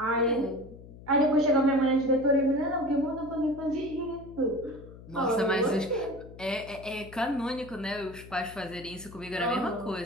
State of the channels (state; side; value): noise; left; hum, 17 dB below the sound